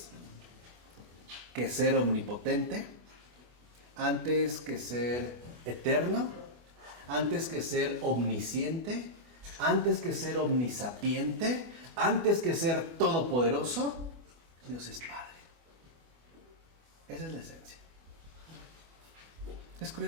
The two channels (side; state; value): left; late; 24 ms